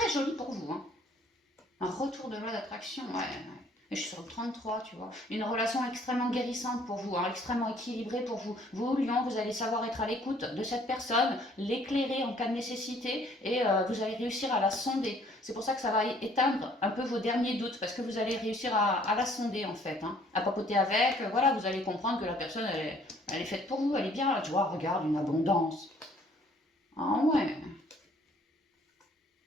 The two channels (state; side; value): normal; both; correlation 0.60